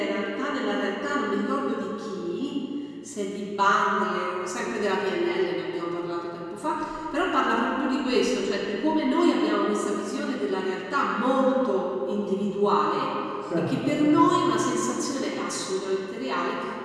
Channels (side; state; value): both; identical; correlation 1.00